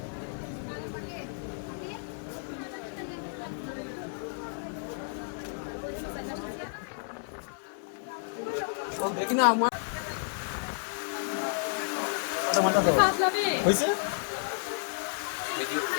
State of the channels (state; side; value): silent; right; digital silence